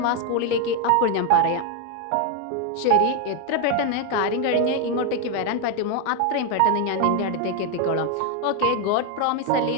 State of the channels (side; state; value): both; different; correlation 0.01